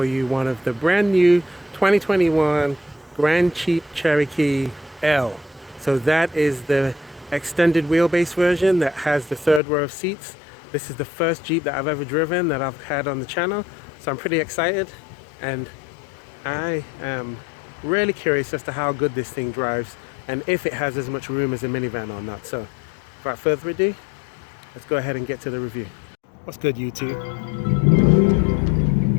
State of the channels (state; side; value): drops out; right; at 9.6 s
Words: you one of the brand new 2021 Grand Jeep Cherokee L. So that is the extended wheelbase version that has the third row of seats. This is the first Jeep that I've ever driven that I've had on the channel, so I'm pretty excited, and I am really curious as to how good this thing drives and if it has as much room as a minivan or not. So without further ado, let's go ahead and get to the review. What's good, YouTube?